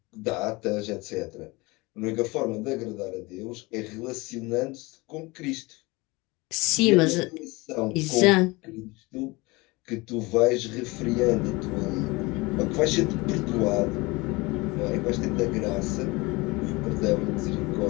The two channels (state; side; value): quieter; right; 23.8 dB